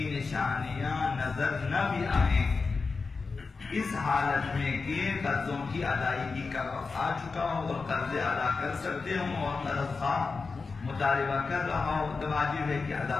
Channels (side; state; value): right; quieter; 4.4 dB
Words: نشانیاں نظر نہ بھی آئیں، اس حالت میں کہ قرضوں کی ادائیگی کا وقت آ چکا ہو اور قرضے ادا کر سکتے ہوں اور قرض خواہ مطالبہ کر رہا ہو، تو واجب ہے کہ